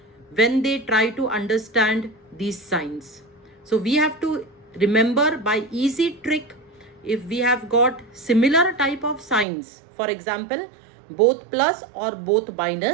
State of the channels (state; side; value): drops out; left; at 9.5 s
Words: when they try to understand these signs. So we have to remember by easy trick, if we have got similar type of signs, for example, both plus or both